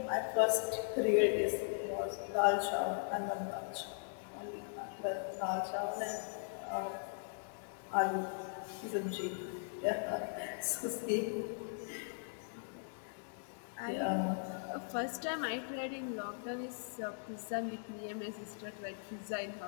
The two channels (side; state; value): right; silent; digital silence